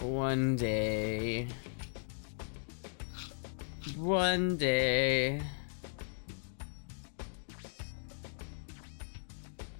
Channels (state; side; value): silent; right; digital silence